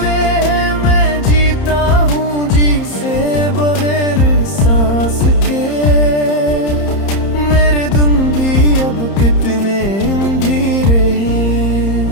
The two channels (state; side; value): late; right; 30 ms